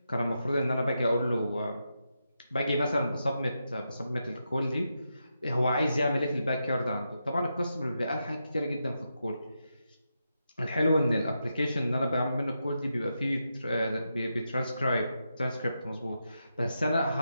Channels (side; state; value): both; inverted; correlation -0.86